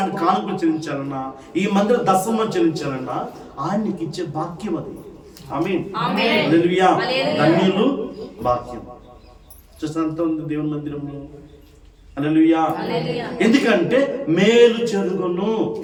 కానుకలు చెల్లించాలన్నా, ఈ మందిరం దశమం చెల్లించాలన్నా ఆయనకి ఇచ్చే భాగ్యం అది. ఆమేన్. హల్లెలూయా. ధన్యులు, భాగ్యం. చూసినంత ఉంది దేవుని మందిరంలో. హల్లెలూయా. ఎందుకంటే మేలు చెరుగును.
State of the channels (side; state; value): both; identical; correlation 1.00